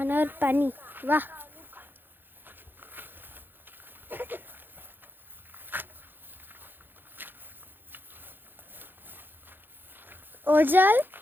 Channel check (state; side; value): late; left; 0.096 ms